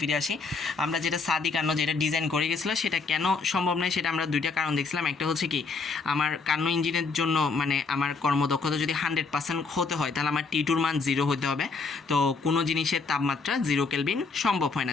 আসি। আমরা যেটা সাদি কার্নো যেটা ডিজাইন করে গেছিলো সেটা কেন সম্ভব নয়, সেটা আমরা দুইটা কারণ দেখছিলাম। একটা হচ্ছে কি আমার কার্নো ইঞ্জিনের জন্য মানে আমার কর্মদক্ষতা যদি 100% হতে হয় তাহলে আমার T2 মান 0 হতে হবে। তো কোনো জিনিসের তাপমাত্রা 0 কেলভিন সম্ভব হয়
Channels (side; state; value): right; quieter; 4.4 dB